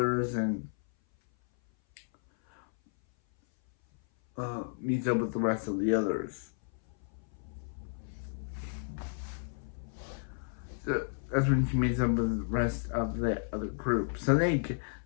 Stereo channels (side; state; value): right; silent; 56 dB below the other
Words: and meets up with the rest of the others. So that's when she meets up with the rest of the other group. So they